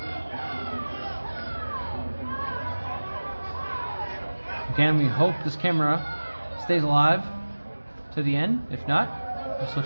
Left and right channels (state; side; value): inverted; both; correlation -1.00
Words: Again, we hope this camera stays alive to the end. If not, we'll switch